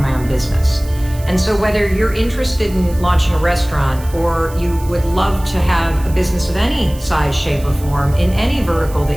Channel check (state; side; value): noise; right; hiss, 19 dB below the sound